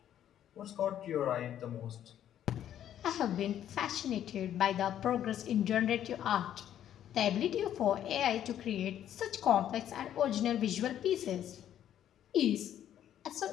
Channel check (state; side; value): quieter; right; 10.7 dB